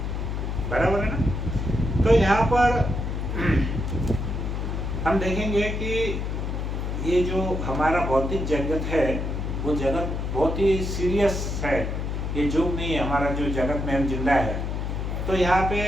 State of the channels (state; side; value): noise; left; hum, 2 dB below the sound